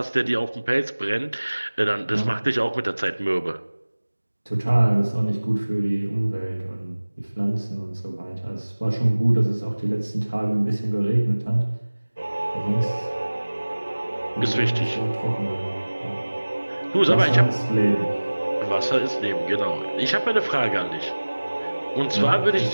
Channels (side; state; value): both; inverted; correlation -1.00